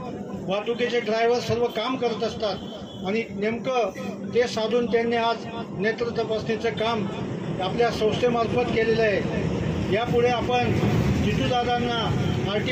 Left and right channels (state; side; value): identical; both; correlation 1.00